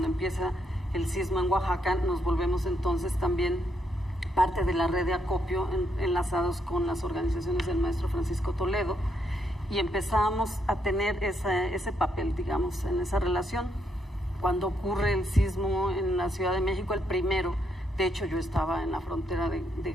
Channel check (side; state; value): both; normal; correlation 0.76